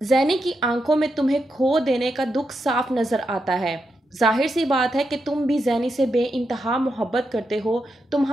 की आंखों में तुम्हें खो देने का दुख साफ नज़र आता है। जाहिर सी बात है कि तुम भी ज़ैनी से बेइंतहा मोहब्बत करते हो,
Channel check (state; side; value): normal; both; correlation 0.85